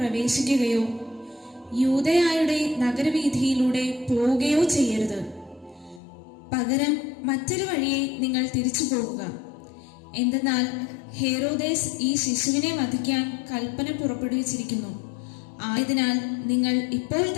യൂദയായുടെ നഗരവീഥിയിലൂടെ പോവുകയോ ചെയ്യരുത്. പകരം മറ്റൊരു വഴിയെ നിങ്ങൾ തിരിച്ചു പോകുക. എന്തെന്നാൽ ഹേറോദേസ് ഈ ശിശുവിനെ വധിക്കാൻ കൽപ്പന പുറപ്പെടുവിച്ചിരിക്കുന്നു. ആയതിനാൽ നിങ്ങൾ ഇപ്പോൾ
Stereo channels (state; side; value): drops out; right; at 6.0 s